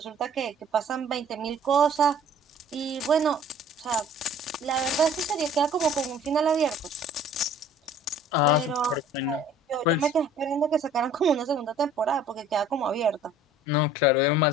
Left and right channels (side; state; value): both; normal; correlation 0.51